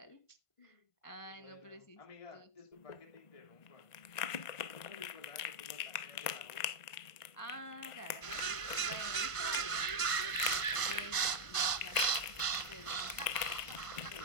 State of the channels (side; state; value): right; late; 1.5 ms